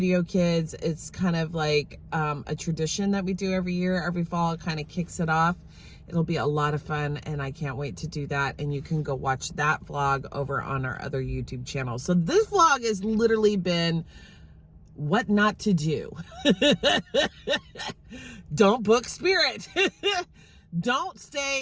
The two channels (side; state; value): both; identical; correlation 1.00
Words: kids. It's kind of like a tradition that we do every year, every fall. It kind of kicks it off. It'll be a lot of fun, and I can't wait to do that. And you can go watch that vlog over on our other YouTube channel. So this vlog has literally been what not to do. Don't book Spirit. Don't